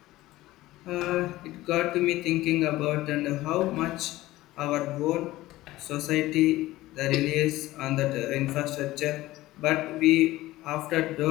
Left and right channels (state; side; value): quieter; right; 17.1 dB